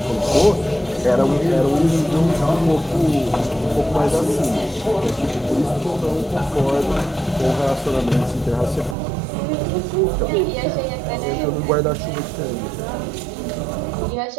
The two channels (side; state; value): left; drops out; at 9.0 s